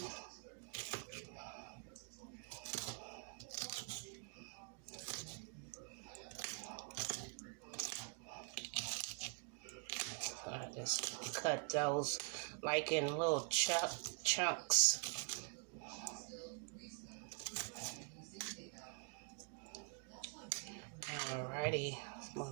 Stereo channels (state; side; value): quieter; left; 36.1 dB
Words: I just cut those like in little chunks. Alrighty,